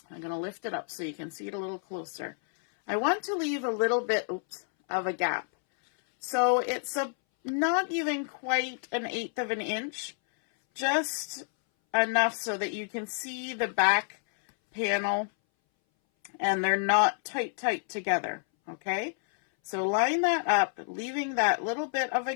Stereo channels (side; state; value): right; silent; 58 dB below the other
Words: I'm going to lift it up so you can see it a little closer. I want to leave a little bit of a gap. So it's not even quite 1/8 of an inch, just enough so that you can see the back panel and they're not tight together, okay? So line that up, leaving that little bit of a